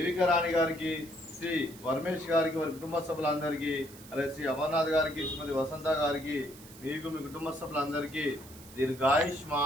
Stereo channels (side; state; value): right; noise; hiss, 19 dB below the sound